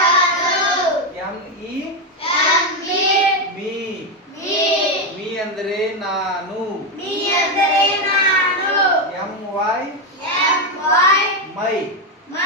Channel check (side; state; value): both; normal; correlation 0.07